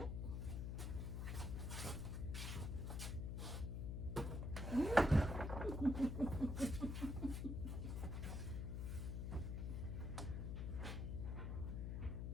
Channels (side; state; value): left; noise; hum, 2 dB below the sound